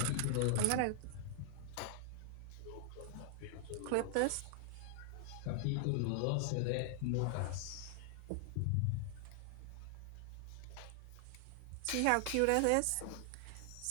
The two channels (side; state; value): both; different; correlation 0.00